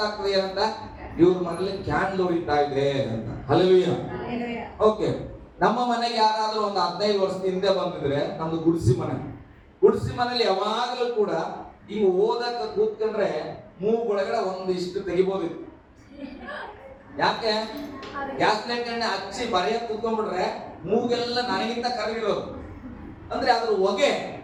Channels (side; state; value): both; identical; correlation 1.00